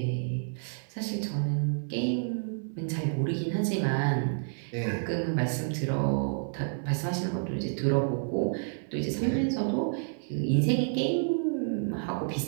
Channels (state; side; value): silent; left; 58 dB below the other